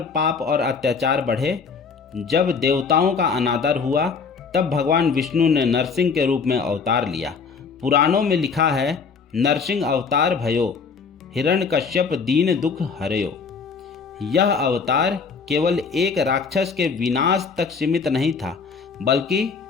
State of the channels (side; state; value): right; quieter; 5.3 dB